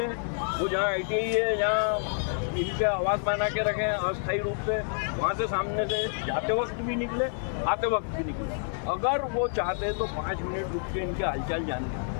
वो जहाँ ITI है जहाँ इनके आवास बना के रखे हैं अस्थायी रूप से, वहाँ से सामने से जाते वक्त भी निकले, आते वक्त भी निकले। अगर वो चाहते तो 5 मिनट रुक के इनके हालचाल जान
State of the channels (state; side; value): silent; right; 59 dB below the other